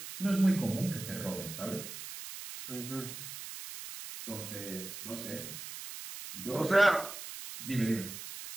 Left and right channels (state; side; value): noise; right; hiss, 10 dB below the sound